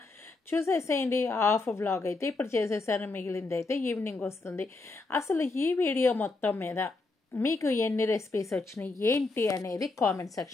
చూసేసేయండి. హాఫ్ వ్లాగ్ అయితే ఇప్పుడు చేసేసాను, మిగిలింది అయితే ఈవినింగ్ వస్తుంది. అసలు ఈ వీడియో మొత్తం మీద మీకు ఎన్ని రెసిపీస్ వచ్చినాయి ఏంటి అనేది కామెంట్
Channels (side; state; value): right; quieter; 3.5 dB